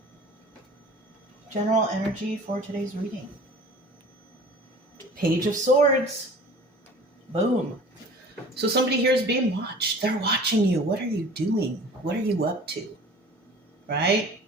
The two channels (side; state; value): both; normal; correlation 0.44